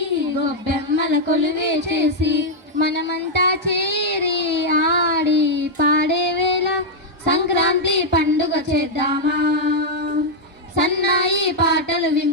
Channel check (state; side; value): normal; both; correlation -0.02